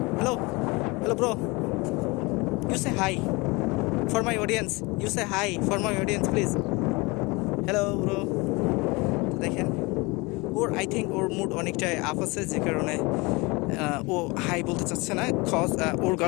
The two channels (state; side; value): quieter; right; 25.5 dB